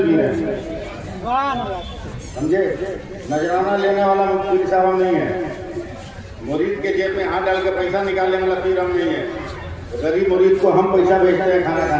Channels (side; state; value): both; identical; correlation 1.00